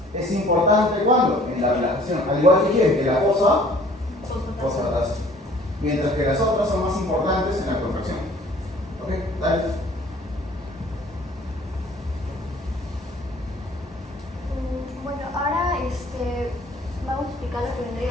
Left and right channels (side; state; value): both; normal; correlation 0.54